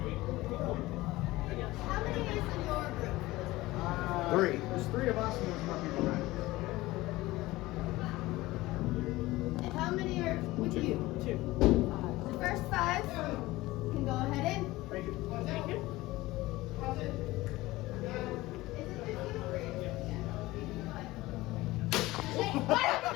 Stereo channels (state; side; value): quieter; right; 18.8 dB